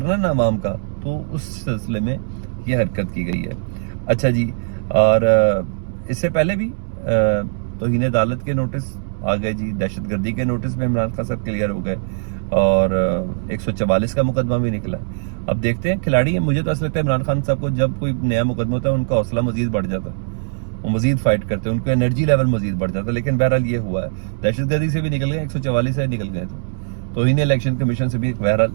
نا عوام کا، تو اس سلسلے میں یہ حرکت کی گئی ہے. اچھا جی، اور اس سے پہلے بھی توہین عدالت کے نوٹس آ گئے جی، دہشت گردی کے نوٹس میں عمران خان صاحب کلیئر ہو گئے اور 144 کا مقدمہ بھی نکلا. اب دیکھتے ہیں، کھلاڑی ہیں. مجھے تو ایسا لگتا ہے عمران خان صاحب کو جب کوئی نیا مقدمہ ہوتا ہے ان کا حوصلہ مزید بڑھ جاتا ہے، وہ مزید فائٹ کرتے ہیں، ان کا انرجی لیول مزید بڑھ جاتا ہے. لیکن بہرحال یہ ہوا ہے، دہشت گردی سے بھی نکل گئے، 144 سے نکل گئے، تو انہیں الیکشن کمیشن سے بھی بہرحال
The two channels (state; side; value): silent; left; digital silence